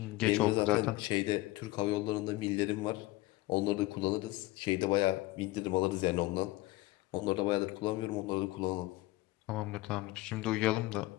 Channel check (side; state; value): right; quieter; 19.4 dB